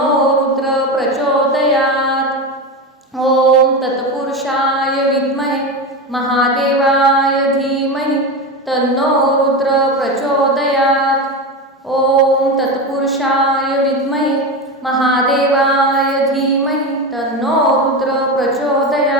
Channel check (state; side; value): normal; both; correlation 0.20